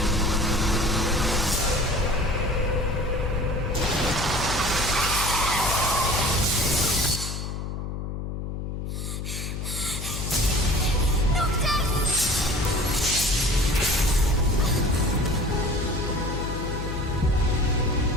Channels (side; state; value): left; noise; hum, 5 dB below the sound